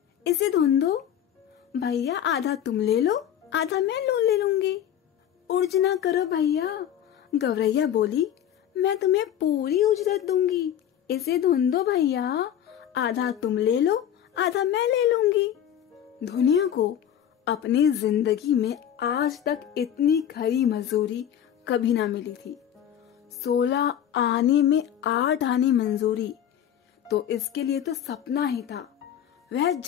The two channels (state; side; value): quieter; right; 10.0 dB